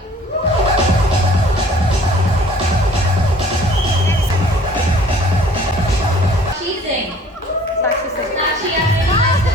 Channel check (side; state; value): both; normal; correlation 0.53